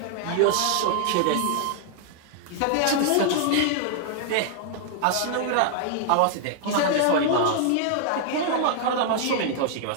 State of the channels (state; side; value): different; both; correlation 0.00